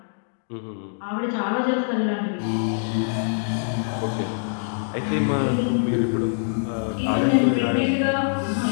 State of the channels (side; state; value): right; silent; digital silence